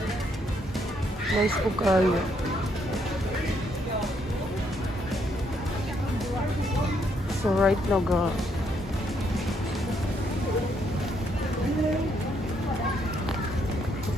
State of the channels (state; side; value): normal; both; correlation 0.73